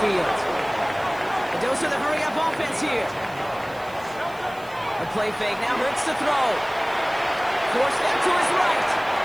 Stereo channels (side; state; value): right; noise; hiss, 24 dB below the sound